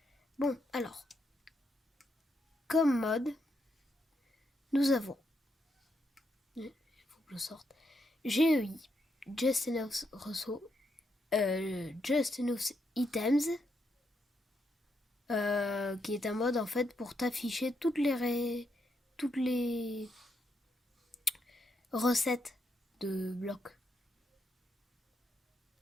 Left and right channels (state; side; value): normal; both; correlation 0.80